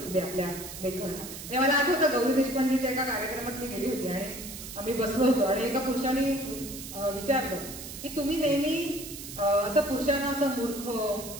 आपल्या लेखनाला. हे मला आठवतं गौरी देशपांडेच्या एका कार्यक्रमात मी गेली होती आणि आम्ही बसलो होतो आणि एका पुरुषाने विचारलं की तुम्ही नेहमी असं पुरुषांना असं मूर्ख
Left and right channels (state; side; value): noise; right; hiss, 11 dB below the sound